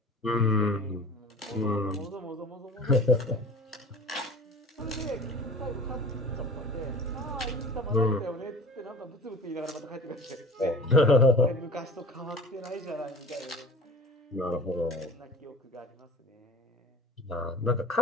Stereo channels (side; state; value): both; normal; correlation 0.41